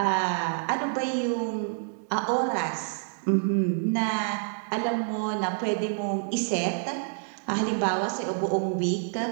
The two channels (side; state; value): left; silent; digital silence